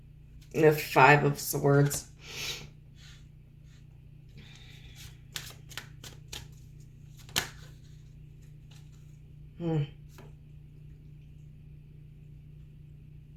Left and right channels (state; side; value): identical; both; correlation 1.00